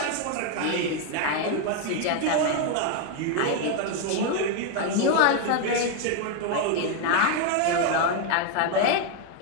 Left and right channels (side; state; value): both; different; correlation 0.01